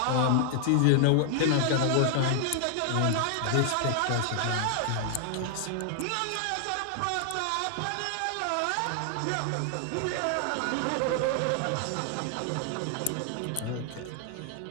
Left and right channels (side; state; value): both; different; correlation 0.00